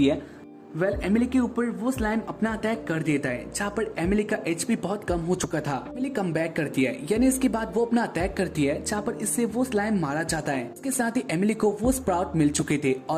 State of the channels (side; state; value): both; identical; correlation 1.00